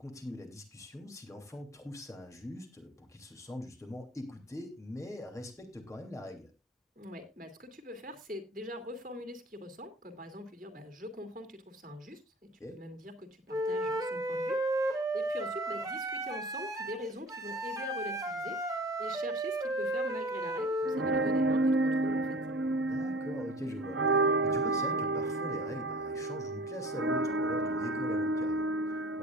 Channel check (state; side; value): normal; both; correlation 0.42